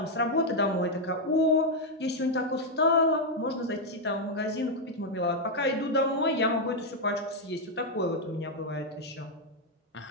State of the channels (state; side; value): normal; both; correlation 0.01